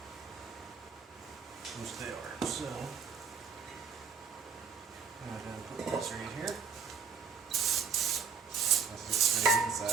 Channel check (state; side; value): quieter; left; 6.0 dB